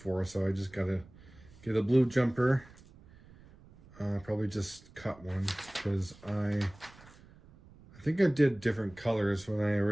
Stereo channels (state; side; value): noise; right; rumble, 23 dB below the sound